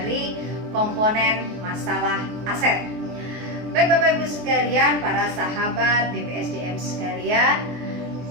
komponen masalah aset. Baik Bapak Ibu sekalian, para sahabat BPSDM sekalian,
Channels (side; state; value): left; late; 24 ms